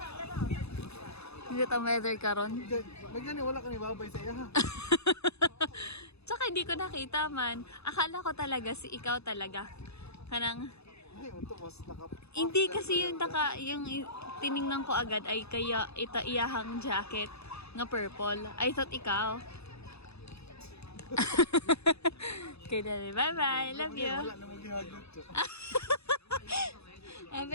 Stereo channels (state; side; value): late; right; 0.79 ms